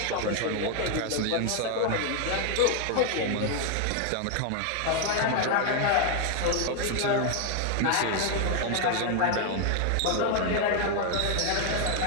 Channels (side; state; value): both; different; correlation 0.00